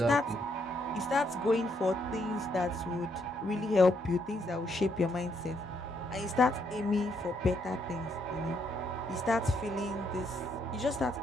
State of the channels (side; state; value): both; normal; correlation 0.74